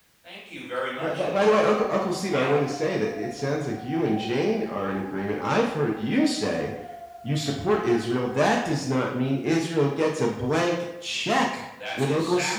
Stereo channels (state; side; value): identical; both; correlation 1.00